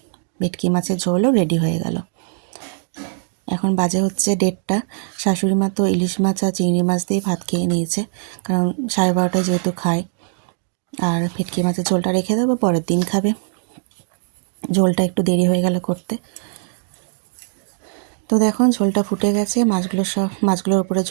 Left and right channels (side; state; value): left; silent; digital silence